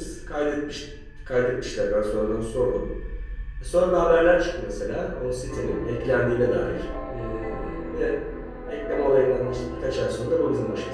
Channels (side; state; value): both; identical; correlation 1.00